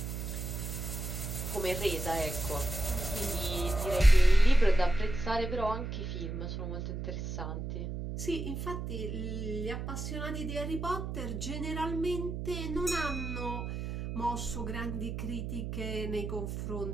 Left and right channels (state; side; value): noise; right; hum, 5 dB below the sound